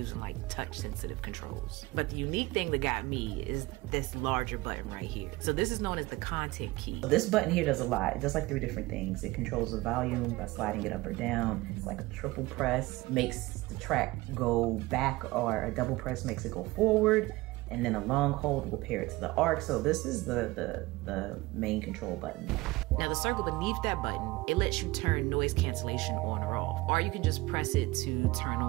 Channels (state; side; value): quieter; left; 20.7 dB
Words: like touch sensitive controls. But the unique thing that got me is this larger button right here. So this is known as the content key. This button here does a lot. It does like 3 different things. It controls the volume by sliding it up or down. It's like a triple press, makes the track go back, or a double press makes it go forward. And then a long hold will pair it to the arc. So this is the main control button. Now the circle beneath that button, it lets you turn noise cancellation on or off. Or you can just press it to turn